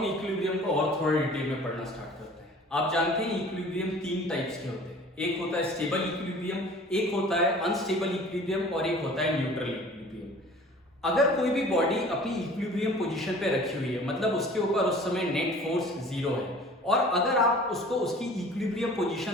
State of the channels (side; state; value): both; normal; correlation 0.47